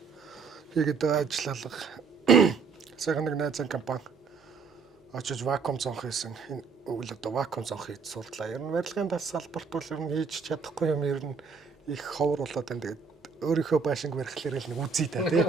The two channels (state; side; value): quieter; left; 5.3 dB